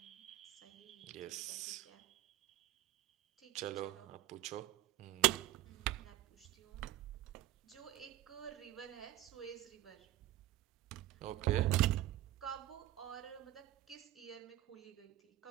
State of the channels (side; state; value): left; quieter; 14.9 dB